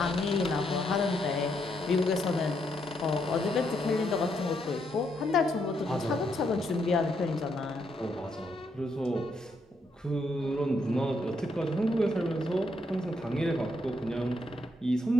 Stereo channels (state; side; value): normal; both; correlation 0.77